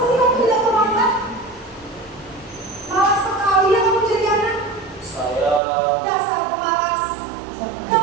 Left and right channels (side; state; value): left; drops out; at 5.6 s